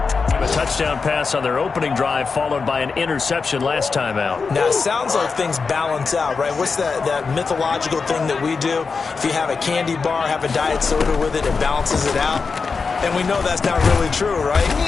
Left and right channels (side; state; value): right; quieter; 4.9 dB